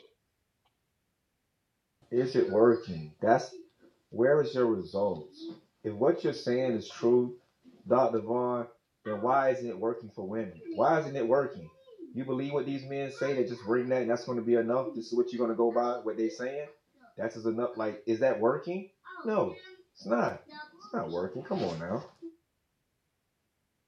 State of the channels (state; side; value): identical; both; correlation 1.00